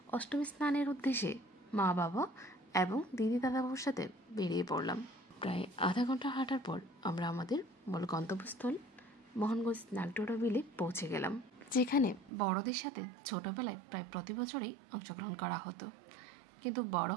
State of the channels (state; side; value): drops out; left; at 12.3 s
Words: অষ্টমী স্নানের উদ্দেশ্যে মা বাবা এবং দিদি দাদাবাবুর সাথে বেরিয়ে পড়লাম। প্রায় আধা ঘন্টা হাঁটার পর আমরা আমাদের মূল গন্তব্যস্থল মোহনগঞ্জ নাগডোরা বিলে পৌঁছে গেলাম, যেখানে বড়দের সাথে ছোটবেলায় প্রায় প্রতি বছরই অংশগ্রহণ করা হতো, কিন্তু বড়